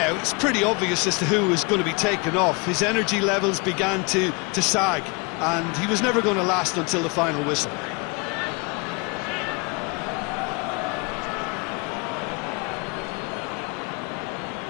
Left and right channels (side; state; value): right; quieter; 29.8 dB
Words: it's pretty obvious as to who was going to be taken off. His energy levels began to sag, and he was never going to last until the final whistle.